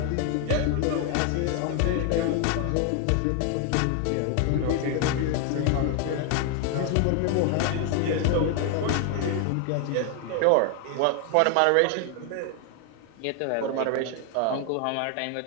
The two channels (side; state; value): both; different; correlation 0.00